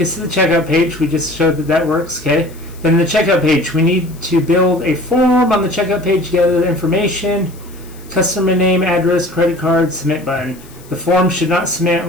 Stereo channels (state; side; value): noise; left; hiss, 24 dB below the sound